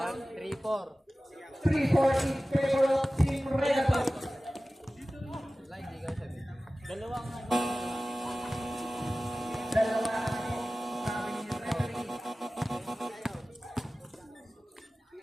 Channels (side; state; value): both; normal; correlation 0.97